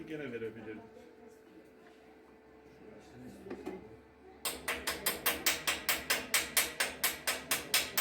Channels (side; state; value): both; identical; correlation 1.00